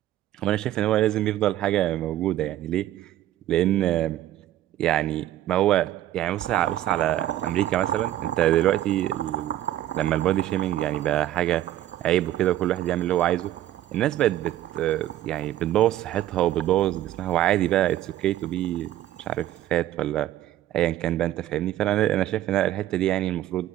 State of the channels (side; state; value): left; quieter; 13.2 dB